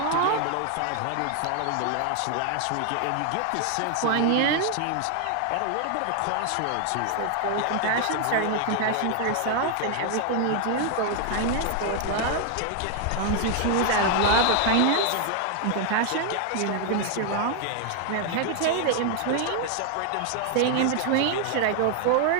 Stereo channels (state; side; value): different; both; correlation 0.00